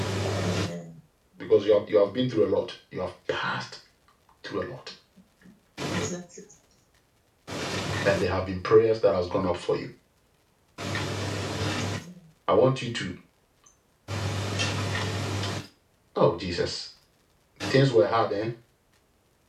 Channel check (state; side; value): identical; both; correlation 1.00